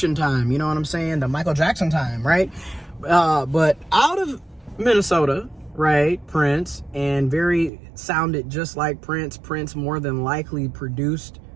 time, you know what I'm saying? The Michael Jackson time, right? But out of Minnesota, right, Prince, and sounded just like Prince. Prince more than likely produced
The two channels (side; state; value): left; drops out; at 7.7 s